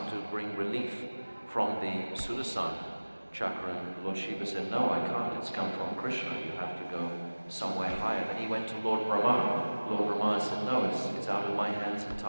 to bring relief from the Sudarsana chakra, and Lord Shiva said, no, I can't, it's come from Krishna, you have to go somewhere higher. Then he went to Lord Brahma. Lord Brahma said, no, it's out of my hands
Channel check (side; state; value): both; inverted; correlation -1.00